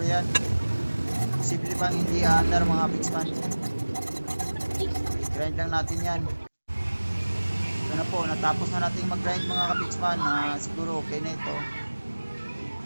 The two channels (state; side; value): inverted; both; correlation -1.00